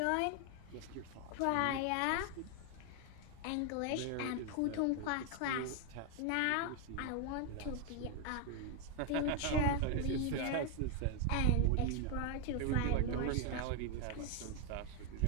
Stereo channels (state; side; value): different; both; correlation 0.01